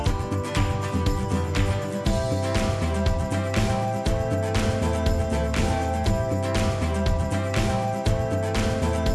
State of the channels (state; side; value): identical; both; correlation 1.00